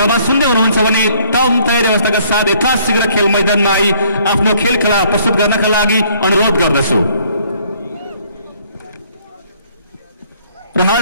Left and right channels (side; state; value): both; inverted; correlation -0.62